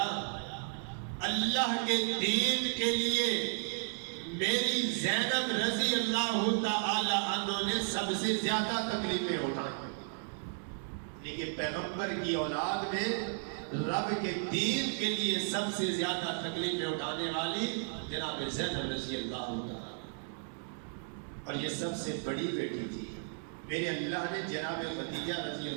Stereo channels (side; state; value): left; silent; digital silence